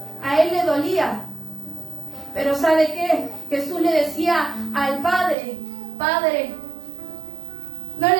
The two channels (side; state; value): left; drops out; at 5.4 s